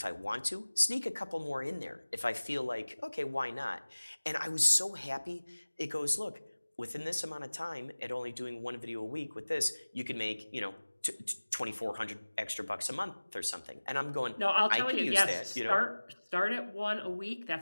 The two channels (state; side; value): inverted; both; correlation -1.00